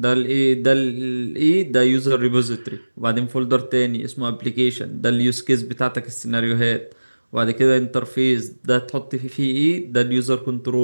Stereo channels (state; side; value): inverted; both; correlation -1.00